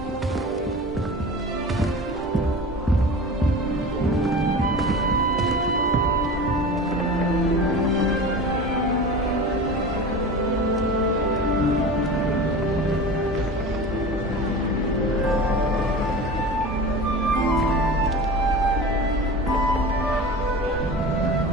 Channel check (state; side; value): normal; both; correlation 0.33